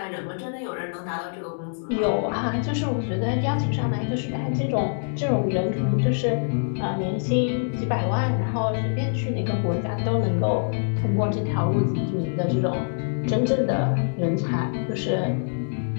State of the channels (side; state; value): right; silent; digital silence